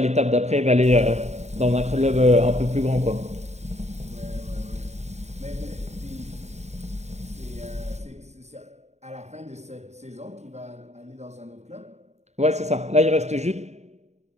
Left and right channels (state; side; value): late; left; 0.32 ms